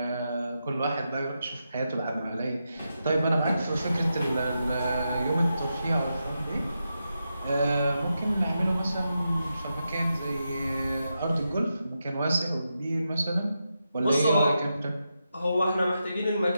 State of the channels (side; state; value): both; inverted; correlation -0.87